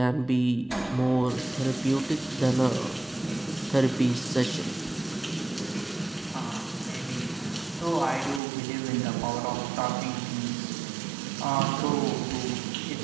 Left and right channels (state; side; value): drops out; left; at 8.4 s